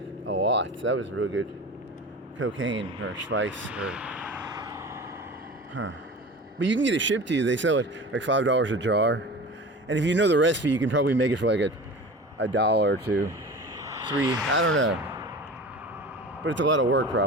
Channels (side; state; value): both; normal; correlation 0.35